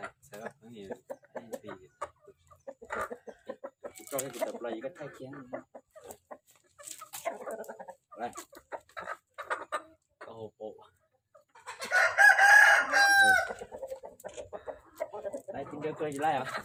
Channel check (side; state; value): both; identical; correlation 1.00